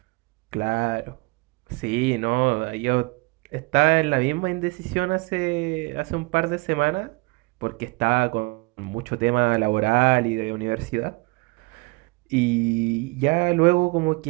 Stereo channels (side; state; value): left; quieter; 27.5 dB